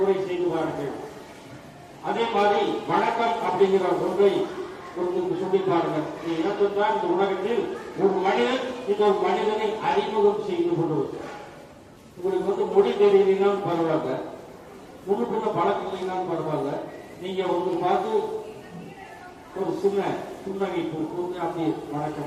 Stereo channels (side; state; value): both; identical; correlation 1.00